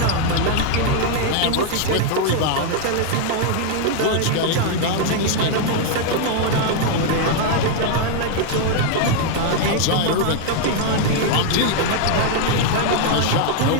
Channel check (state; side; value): different; both; correlation 0.00